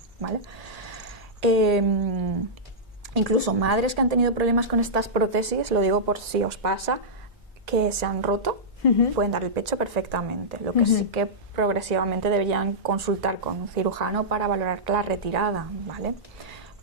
¿vale? Incluso madres que han tenido problemas con estas prótesis, lo digo por si os pasa, que se han roto, pueden dar el pecho perfectamente. Lo que sí que progresivamente deberían consultar con un cirujano para valorar la retirada, ¿vale?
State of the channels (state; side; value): normal; both; correlation -0.12